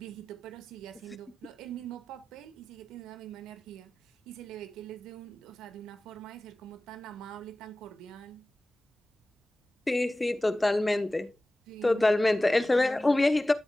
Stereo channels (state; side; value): normal; both; correlation 0.96